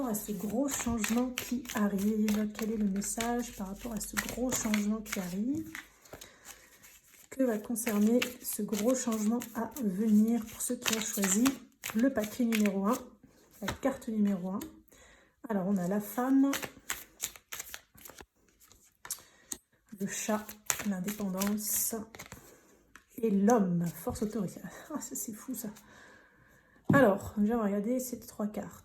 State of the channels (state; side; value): identical; both; correlation 1.00